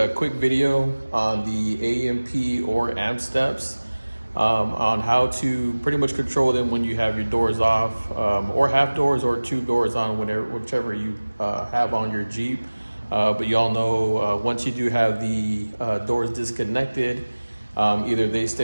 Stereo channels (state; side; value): inverted; both; correlation -1.00